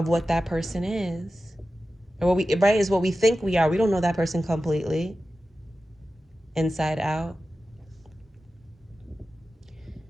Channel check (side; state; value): both; normal; correlation 0.94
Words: what that person is. Or is what we think we are. We don't know that person completely, inside out.